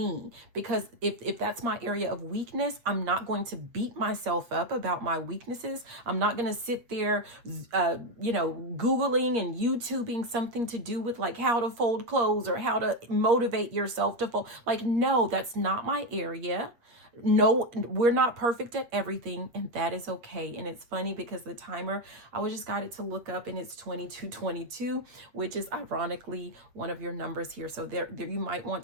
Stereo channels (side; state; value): left; late; 8.0 ms